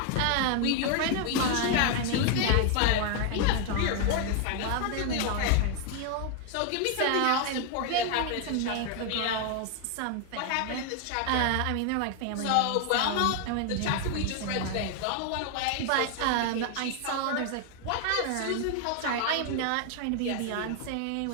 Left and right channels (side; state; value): both; different; correlation 0.00